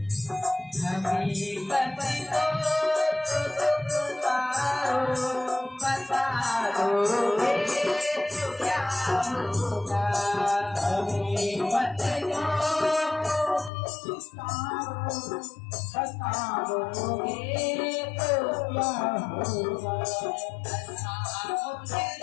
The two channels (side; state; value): right; drops out; at 13.7 s